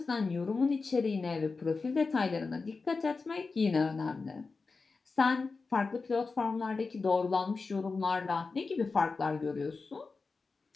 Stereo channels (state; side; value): quieter; right; 4.2 dB